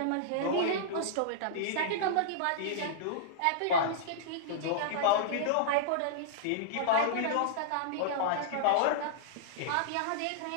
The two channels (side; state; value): both; different; correlation -0.02